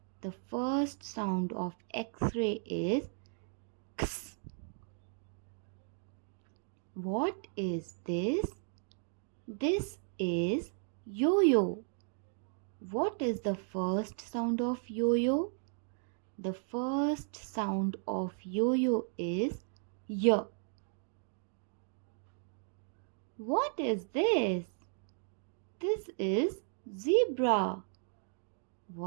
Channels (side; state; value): left; silent; 54 dB below the other